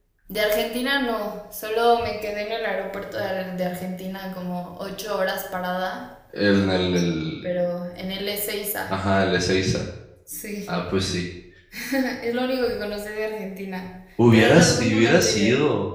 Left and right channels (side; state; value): both; identical; correlation 1.00